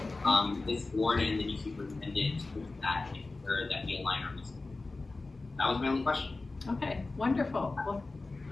this board and the new superintendent to look at that and ensure that we align our goals. That was my only question. Okay, wonderful. Well,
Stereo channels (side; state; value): right; quieter; 3.4 dB